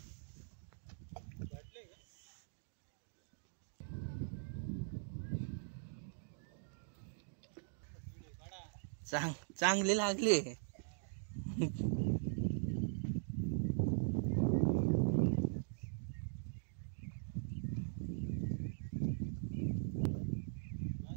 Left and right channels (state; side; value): silent; left; digital silence